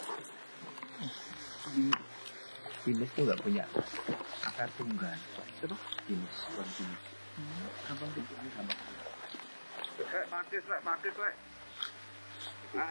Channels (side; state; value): both; inverted; correlation -1.00